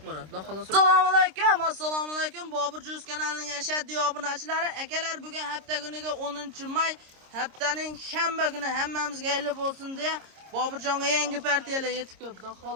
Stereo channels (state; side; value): late; left; 26 ms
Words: bo'ladi. Assalomu alaykum, assalomu alaykum. Bobur Juz kanalining ashaddiy obunachilari, akalar, bugun hafta kuniga 10-may, haftaning shanba kuni hammamizga xayr bo'lsin deya Boburjonga yangi partiyalar yetib keldi.